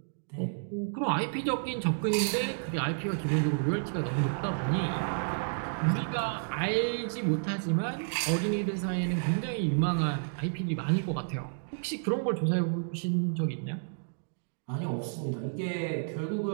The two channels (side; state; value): left; silent; digital silence